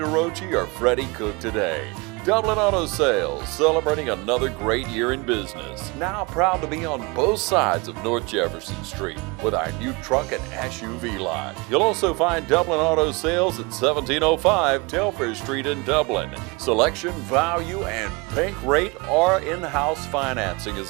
or Freddie Cook today. Dublin Auto Sales, celebrating another great year in business. Now proud to be on both sides of North Jefferson Street with our new truck and SUV lot. You'll also find Dublin Auto Sales at 1705 Telfair Street in Dublin. Selection, value, and bank rate or in-house financing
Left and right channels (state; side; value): quieter; left; 27.0 dB